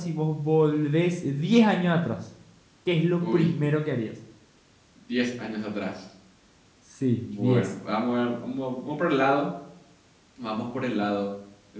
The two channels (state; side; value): identical; both; correlation 1.00